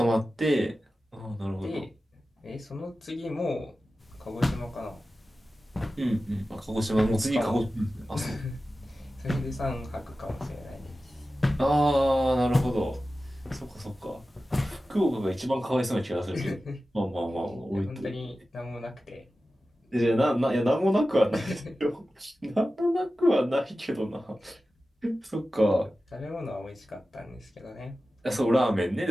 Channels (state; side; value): normal; both; correlation 0.94